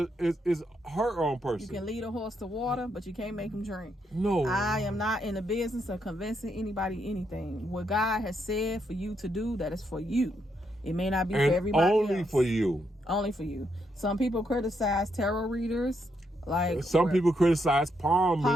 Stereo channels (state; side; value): normal; both; correlation 0.78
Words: her own person. You can lead a horse to water, but you can't make him drink. No. I am not in the business of convincing anybody anything. What God has said for you to do, that is for you. It may not be for everybody only else. for you. Only for you. Some people criticize tarot readers. Some people criticize